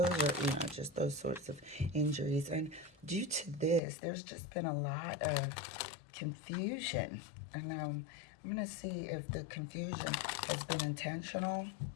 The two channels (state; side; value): drops out; right; at 3.8 s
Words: are, just those sorts of injuries. And due to this, there's just been a lot of confusion. And I'm going to see if the confusion has been intentional